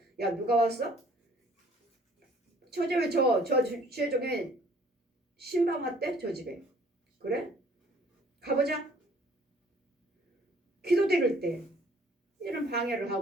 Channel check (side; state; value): both; normal; correlation 0.57